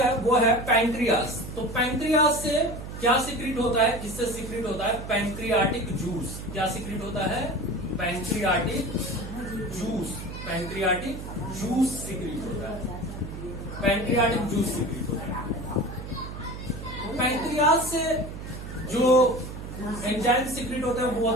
वो है पैंक्रियास। तो पैंक्रियास से क्या सीक्रेट होता है? इससे सीक्रेट होता है पैंक्रियाटिक जूस। क्या सीक्रेट होता है? Pancreatic juice. Pancreatic juice secrete होता है। पैंक्रियाटिक जूस सीक्रेट होता है। पैंक्रियास से जो एंजाइम सीक्रेट होता है वो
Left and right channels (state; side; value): noise; right; hum, 9 dB below the sound